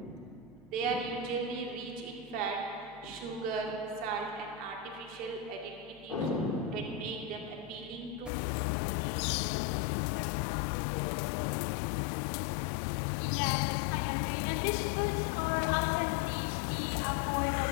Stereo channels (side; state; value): right; drops out; at 8.3 s